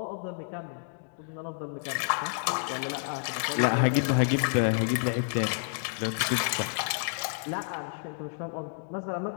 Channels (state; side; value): silent; right; digital silence